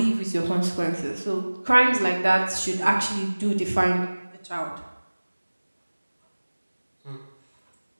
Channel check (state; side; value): inverted; both; correlation -1.00